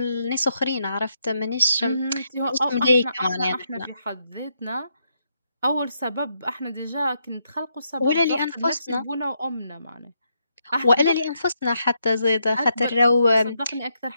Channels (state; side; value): inverted; both; correlation -0.80